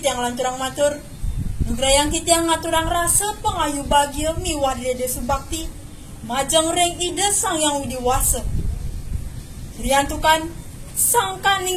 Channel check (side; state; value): both; identical; correlation 1.00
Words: lanturang matur, nugrayang titiang ngaturang rasa pengayu bagia miwar dede subakti, majang reng ide sang yang widiwasa. Riantukan sang